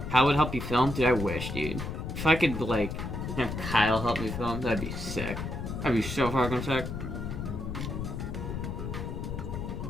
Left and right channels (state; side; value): noise; left; rumble, 5 dB below the sound